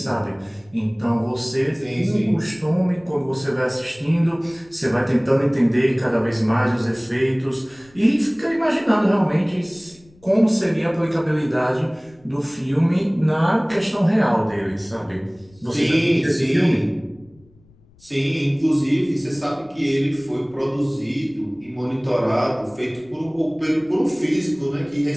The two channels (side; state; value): left; noise; rumble, 28 dB below the sound